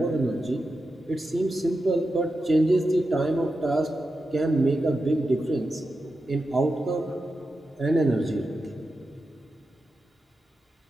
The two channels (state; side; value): normal; both; correlation 0.90